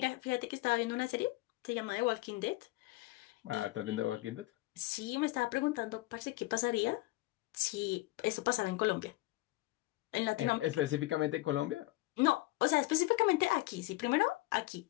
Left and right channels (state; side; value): quieter; right; 19.7 dB